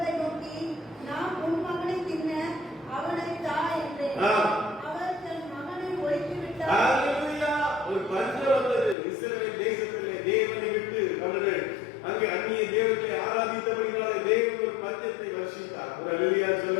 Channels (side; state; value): right; drops out; at 9.0 s